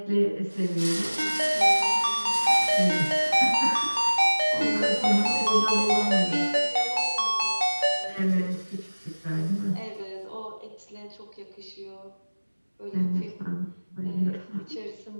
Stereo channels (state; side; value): inverted; both; correlation -1.00